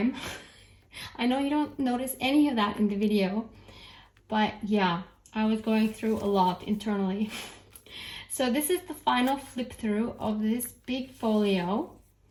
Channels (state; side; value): identical; both; correlation 1.00